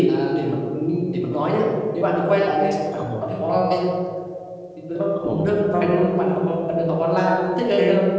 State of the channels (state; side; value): identical; both; correlation 1.00